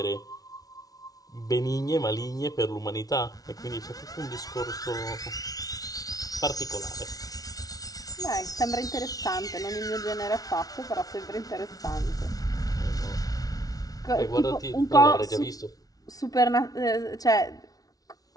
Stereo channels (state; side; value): late; right; 0.18 ms